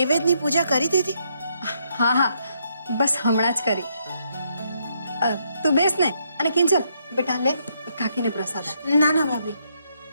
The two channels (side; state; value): both; inverted; correlation -0.75